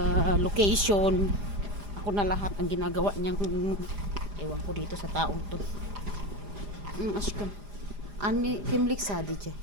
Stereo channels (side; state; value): left; late; 4.9 ms